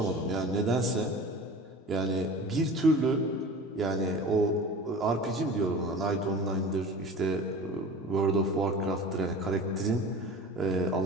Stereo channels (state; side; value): normal; both; correlation 0.37